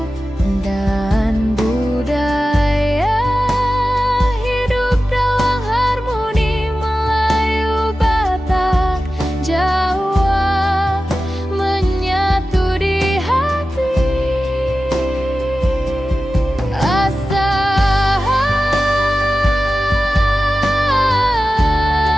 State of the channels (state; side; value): normal; both; correlation 0.94